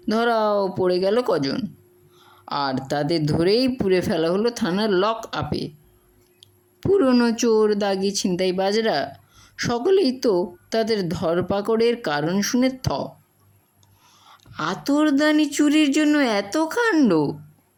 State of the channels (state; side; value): identical; both; correlation 1.00